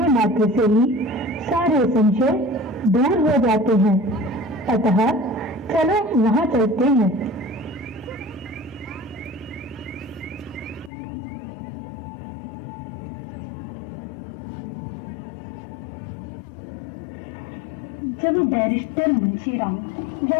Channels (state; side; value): drops out; right; at 10.9 s